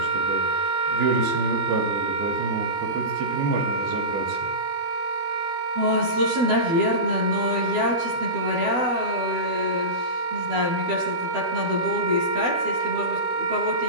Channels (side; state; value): left; late; 12 ms